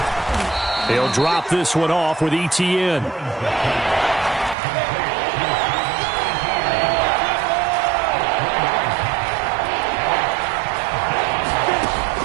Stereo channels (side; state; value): left; drops out; at 4.5 s